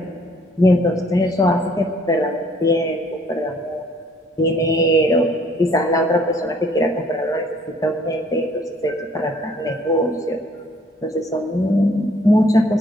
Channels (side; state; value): both; normal; correlation 0.60